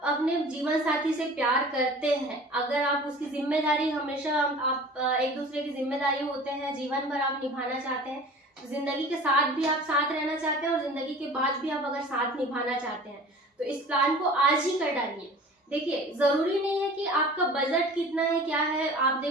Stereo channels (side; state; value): both; normal; correlation 0.42